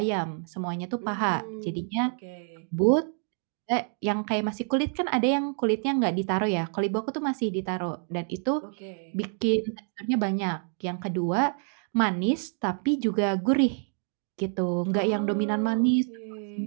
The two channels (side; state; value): left; silent; 56 dB below the other